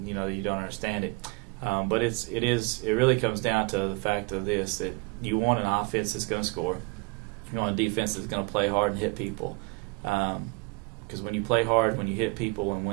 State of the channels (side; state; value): left; quieter; 28.2 dB